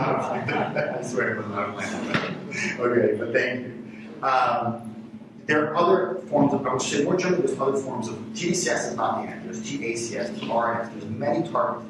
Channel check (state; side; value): identical; both; correlation 1.00